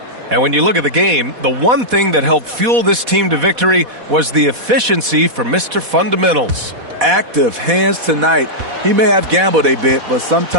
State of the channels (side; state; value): left; late; 4.1 ms